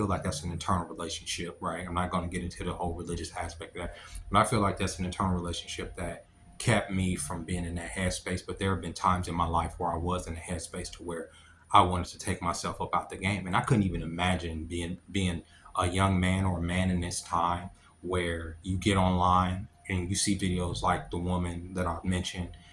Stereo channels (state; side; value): identical; both; correlation 1.00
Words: like that's an internal relationship, right? I'm not going to get into the whole religious aspect of that, but I feel like that's an internal relationship that kept me from being in that headspace. But there have been times in my life where I was in a headspace to where I wanted to take myself up out the game, and I couldn't even imagine being a young man or a man in this time where you get online and you see videos like the woman that I mentioned